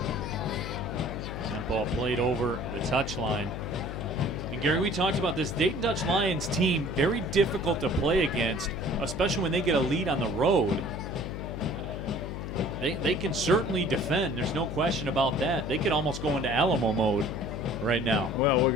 That ball played over the touchline. And Gary, we talked about this. Dayton Dutch Lions team, very difficult to play against, especially when they get a lead on the road. They can certainly defend. There's no question about that. They could almost go into Alamo mode right now. Well, we're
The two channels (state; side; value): noise; left; hum, 6 dB below the sound